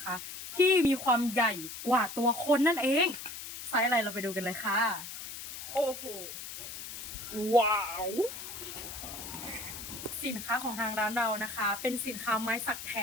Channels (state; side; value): noise; left; hiss, 9 dB below the sound